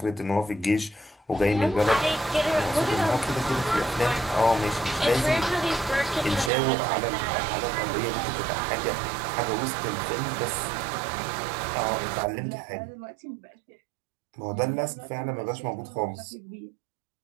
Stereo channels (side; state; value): left; drops out; at 6.5 s